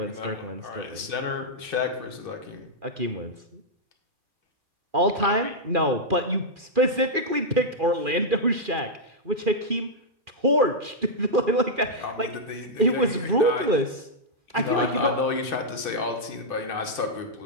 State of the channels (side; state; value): left; late; 2.4 ms